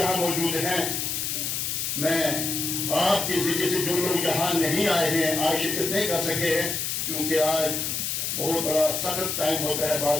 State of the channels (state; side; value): noise; left; hiss, 1 dB below the sound